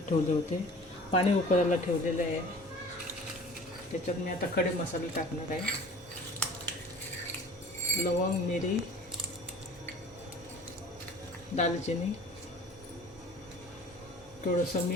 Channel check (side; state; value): both; normal; correlation 0.45